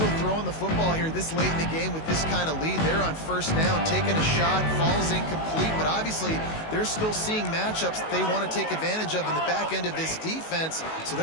throwing the football here this late in the game with this kind of lead. They're on 1st down, taking a shot, falls incomplete, but obviously they're still seeing matchups that they want to take advantage of in the back end of this defense, so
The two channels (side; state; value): right; late; 19 ms